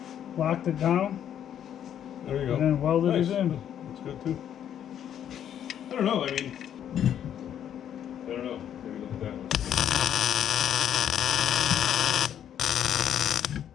locked it down, There you go. and then welded Nice. it in. That's good too. I don't know. I mean, I don't know. Maybe look at that one.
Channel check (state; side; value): quieter; right; 9.8 dB